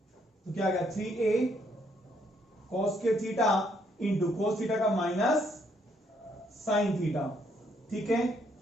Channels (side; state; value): both; normal; correlation 0.70